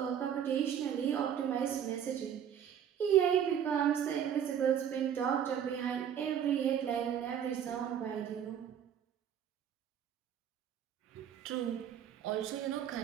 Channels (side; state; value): left; quieter; 9.1 dB